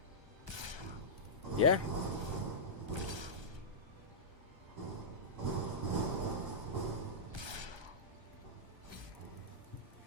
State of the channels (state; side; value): late; left; 1.3 ms